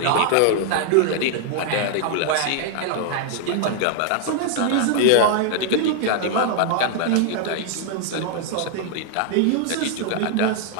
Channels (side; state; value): both; different; correlation -0.01